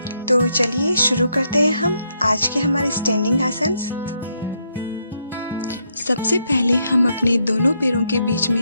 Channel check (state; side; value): inverted; both; correlation -0.77